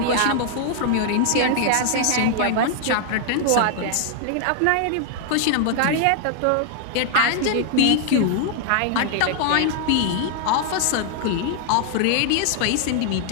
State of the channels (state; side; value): different; both; correlation 0.00